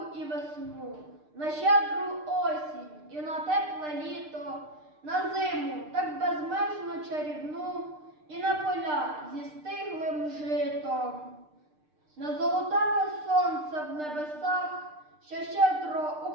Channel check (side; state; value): left; late; 6.6 ms